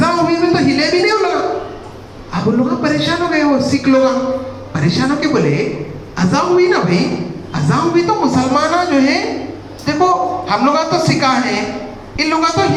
हुई में तो हिले भी नहीं उन लोग। अब उन लोग परेशान हो गए, वो सिख लोग परेशान होके बोले अज़ान हुई ना भाई, अज़ान हुई तो मुसलमान जो है देखो, हम लोग तो सिखा हैं, इन लोग तो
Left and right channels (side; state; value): both; identical; correlation 1.00